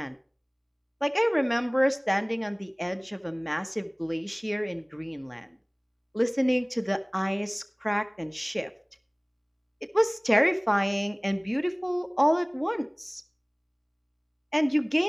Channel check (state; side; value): identical; both; correlation 1.00